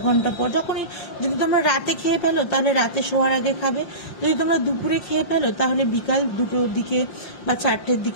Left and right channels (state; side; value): late; right; 5.7 ms